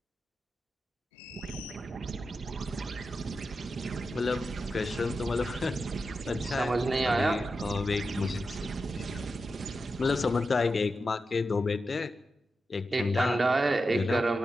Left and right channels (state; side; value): normal; both; correlation 0.89